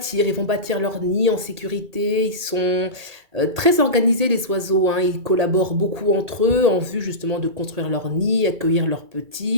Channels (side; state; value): left; late; 2.3 ms